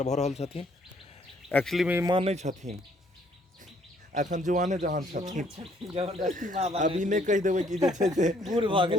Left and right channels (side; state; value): both; normal; correlation 0.65